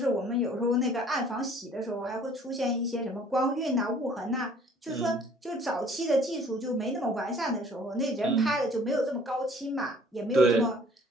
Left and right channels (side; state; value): both; normal; correlation 0.55